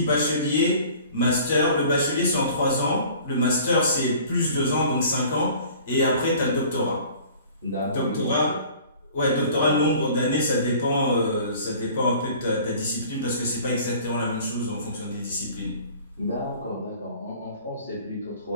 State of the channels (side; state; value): both; inverted; correlation -0.48